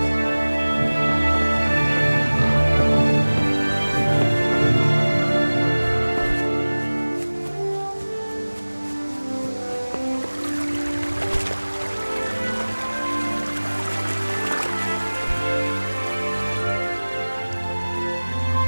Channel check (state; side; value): inverted; both; correlation -1.00